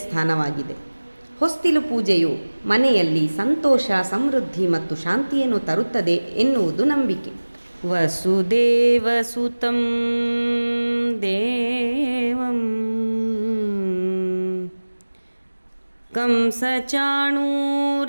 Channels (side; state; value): both; inverted; correlation -1.00